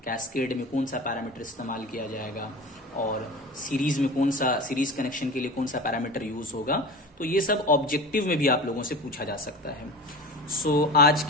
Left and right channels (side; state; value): both; normal; correlation 0.33